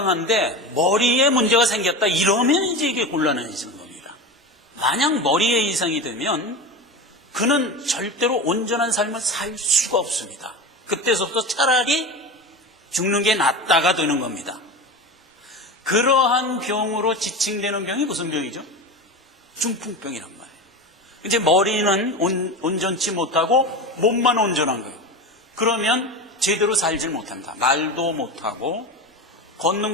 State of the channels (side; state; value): both; normal; correlation 0.26